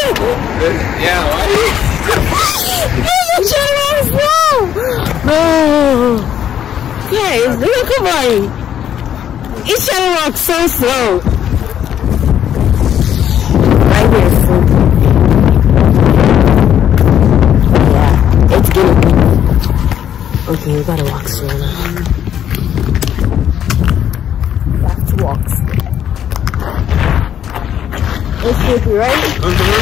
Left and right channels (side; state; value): right; quieter; 9.9 dB